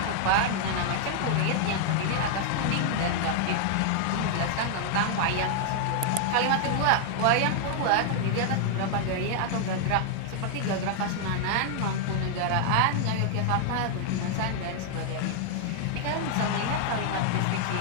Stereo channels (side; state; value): both; different; correlation 0.00